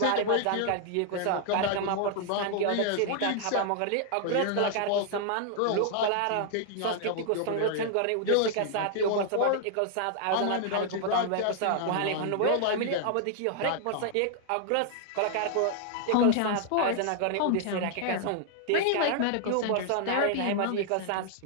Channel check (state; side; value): different; both; correlation 0.00